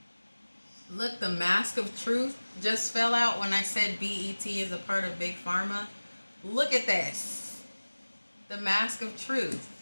Look, the mask of truth just fell out when I said BET is a part of big pharma. Look at this. The mask of truth.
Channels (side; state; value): both; inverted; correlation -1.00